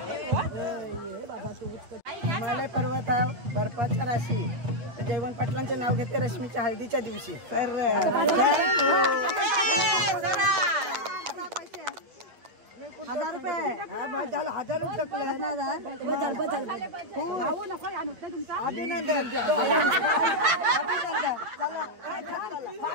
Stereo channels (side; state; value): left; late; 8.7 ms